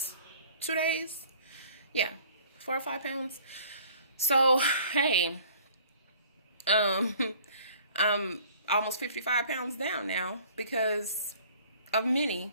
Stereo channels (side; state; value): both; inverted; correlation -0.52